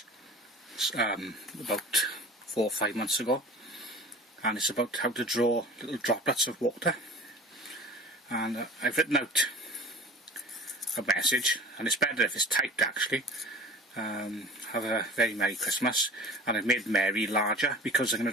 about 4 or 5 months ago, and it's about how to draw little droplets of water. And I've written out a message, and it's better if it's typed actually. Have a very Merry Christmas, and I've made Mary larger because I'm going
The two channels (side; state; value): both; normal; correlation 0.40